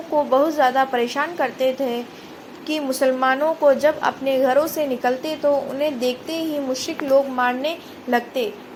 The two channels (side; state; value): both; identical; correlation 1.00